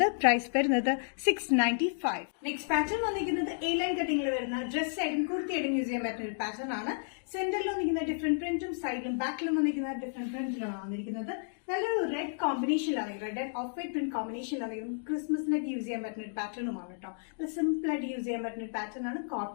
പ്രൈസ് വരുന്നത് 695. നെക്സ്റ്റ് പാറ്റേൺ വന്നിരിക്കുന്നത് എ ലൈൻ കട്ടിംഗിൽ വരുന്ന ഡ്രസ് സൈഡും കുർത്തി ആയിട്ടും യൂസ് ചെയ്യാൻ പറ്റുന്ന ഒരു പാറ്റേൺ ആണ്. സെന്ററിൽ വന്നിരിക്കുന്ന ഡിഫറെന്റ് പ്രിന്റും സൈഡിലും ബാക്കിലും വന്നിരിക്കുന്ന ഡിഫറെന്റ് പ്രിന്റിലാണ് വന്നിരിക്കുന്നത്. നല്ലൊരു റെഡ് കോമ്പിനേഷനിലാണ്. Red and off white print കോമ്പിനേഷനിലാണ്. ക്രിസ്മസിനൊക്കെ യൂസ് ചെയ്യാൻ പറ്റുന്ന ഒരു പാറ്റേണുമാണ് കേട്ടോ. സിമ്പിൾ ആയിട്ട് യൂസ് ചെയ്യാൻ പറ്റുന്ന ഒരു പാറ്റേൺ ആണ്.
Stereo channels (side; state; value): right; silent; digital silence